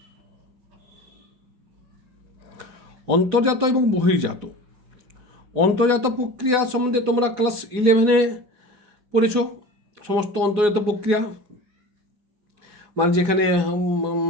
অন্তর্জাত এবং বহির্জাত। অন্তর্জাত প্রক্রিয়া সম্বন্ধে তোমরা ক্লাস 11-এ পড়েছ। সমস্ত অন্তর্জাত প্রক্রিয়া মানে যেখানে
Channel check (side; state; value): left; late; 4.8 ms